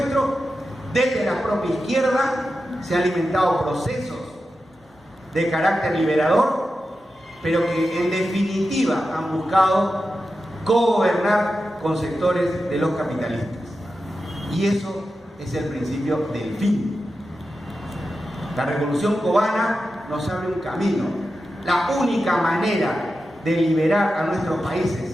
desde la propia izquierda se han alimentado procesos de carácter liberador, pero que en definitiva han buscado cogobernar con sectores de los capitalistas. Y eso es el principio del fin. La revolución cubana nos abre un camino. La única manera de liberar a nuestros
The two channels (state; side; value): normal; both; correlation 0.91